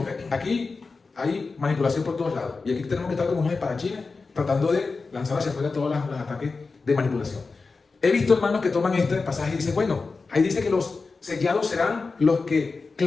aquí hay manipulación por todos lados. Y aquí tenemos que estar como unos espadachines tratando de lanzar hacia afuera todos los ataques de manipulación. He visto hermanos que toman este pasaje y dicen, bueno, ahí dice que los sellados serán los que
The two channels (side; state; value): right; quieter; 4.2 dB